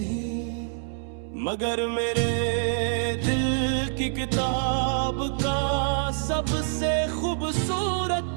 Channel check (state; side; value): silent; left; 61 dB below the other